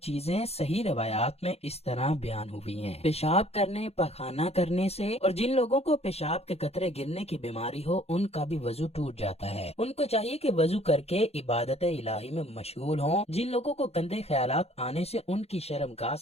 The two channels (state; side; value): late; right; 0.30 ms